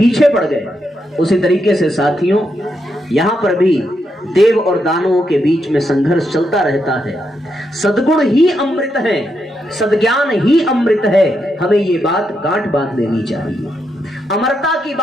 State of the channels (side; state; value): both; normal; correlation 0.82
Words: पड़ गए। उसी तरीके से साथियों यहाँ पर भी देव और दानवों के बीच में संघर्ष चलता रहता है। सद्गुण ही अमृत है, सद्ज्ञान ही अमृत है, हमें ये बात गांठ बांध लेनी चाहिए। अमरता की